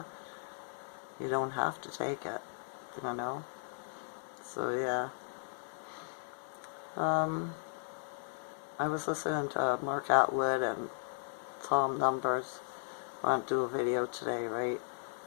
you don't have to take it, you know? So yeah. I was listening to Mark Atwood and Tom Numbers. I want to do a video today, right?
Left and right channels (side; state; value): right; silent; digital silence